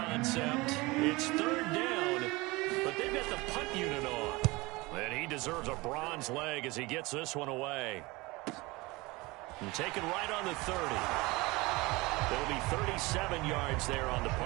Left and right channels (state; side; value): quieter; left; 22.9 dB